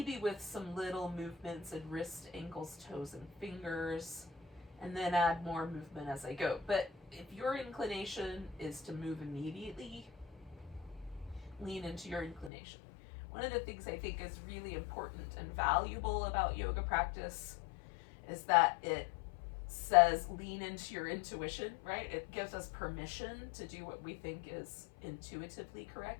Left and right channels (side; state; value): right; drops out; at 12.5 s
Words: with some little movements in wrist, ankles, toes, and fingers, and then add more movement as I go. But if your inclination is to move immediately, lean into your inclination. One of the things I think is really important and valuable about yoga practice is that it says lean into your intuition, right? It gives us permission to do what we think is intuitively